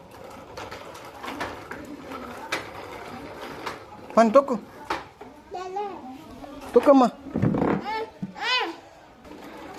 పని తొక్కు, తొక్కమ్మా.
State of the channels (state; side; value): identical; both; correlation 1.00